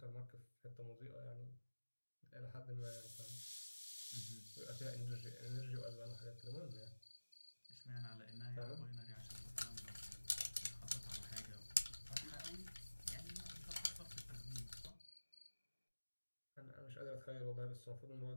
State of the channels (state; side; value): inverted; both; correlation -1.00